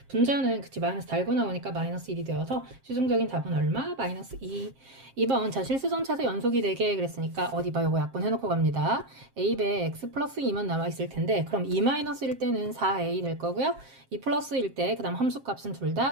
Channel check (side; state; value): left; late; 7.5 ms